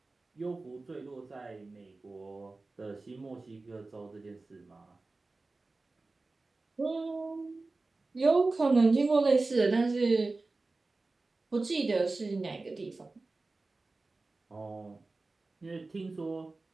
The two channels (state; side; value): quieter; left; 3.4 dB